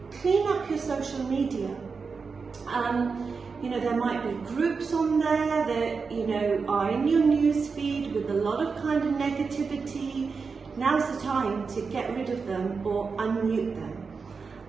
Clean up your social media. You know, there might be groups on there that, you know, are in your news feed with a lot of kind of negativity. Now's the time to get rid of them or unmute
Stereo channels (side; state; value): left; quieter; 5.0 dB